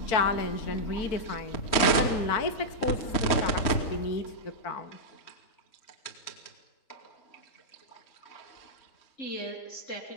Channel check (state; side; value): late; right; 3.2 ms